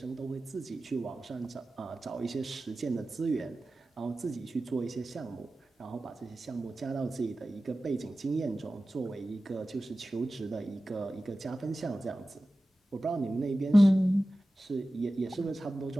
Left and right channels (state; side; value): normal; both; correlation 0.95